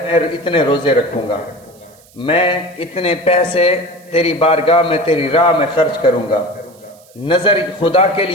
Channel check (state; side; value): noise; right; hiss, 28 dB below the sound